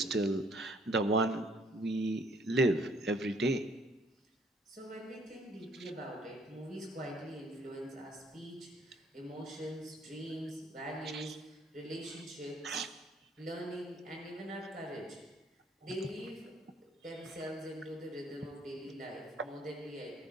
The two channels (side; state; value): both; normal; correlation 0.62